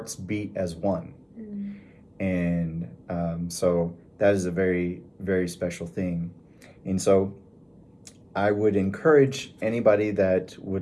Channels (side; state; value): both; identical; correlation 1.00